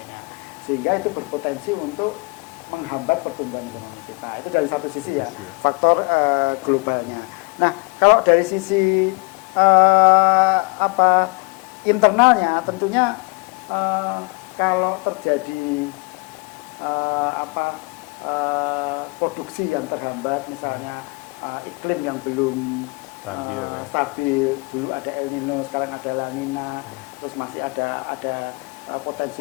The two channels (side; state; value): right; quieter; 29.9 dB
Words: Sehingga itu berpotensi untuk menghambat pertumbuhan ekonomi kita. Itu dari satu sisi ya, faktor globalnya. Nah, kalau dari sisi internalnya tentunya kalau terjadi produksi yang terhambat, misalnya iklim yang belum stabil, dulu ada El Nino, sekarang ada La Nina, terus masih ada